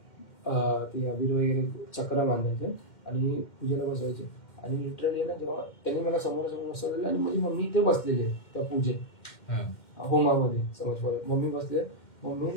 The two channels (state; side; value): late; right; 2.1 ms